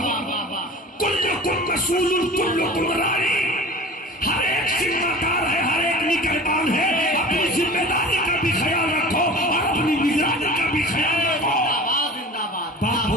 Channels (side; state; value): both; normal; correlation 0.39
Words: کلکم مسئول کلکم راعی. ہر ایک ذمہ دار ہے, ہر ایک نگہبان ہے. اپنی ذمہ داری کا بھی خیال رکھو اور اپنی نگرانی کا بھی خیال رکھو. باپ